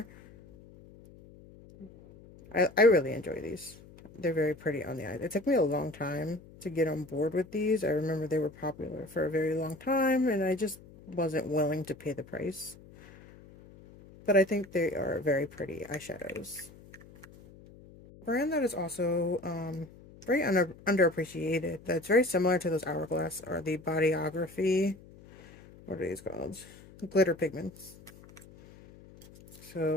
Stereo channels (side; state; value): left; noise; hum, 21 dB below the sound